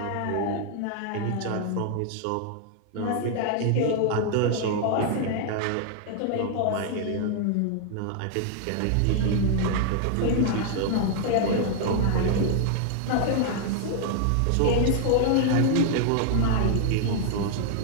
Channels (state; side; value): different; both; correlation 0.00